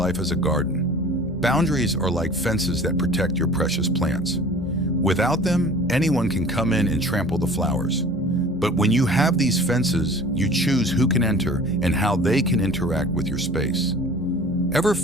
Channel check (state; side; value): normal; both; correlation 0.44